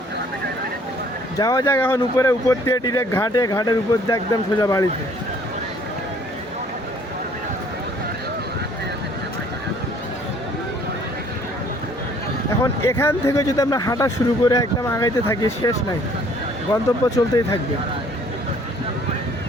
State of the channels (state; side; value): normal; both; correlation 0.58